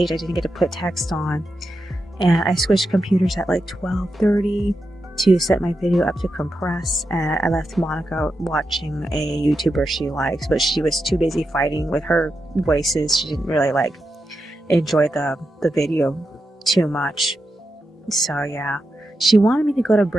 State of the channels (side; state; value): both; normal; correlation 0.88